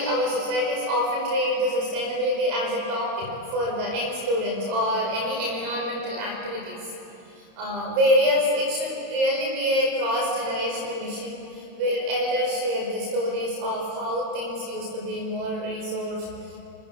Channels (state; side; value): late; left; 30 ms